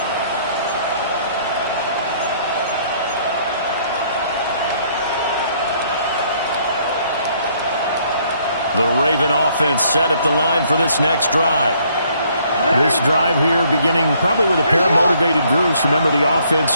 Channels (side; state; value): both; inverted; correlation -0.65